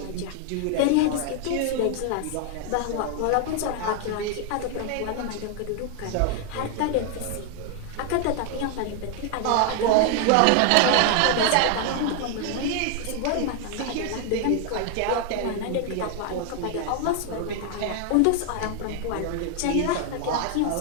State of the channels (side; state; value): both; different; correlation 0.00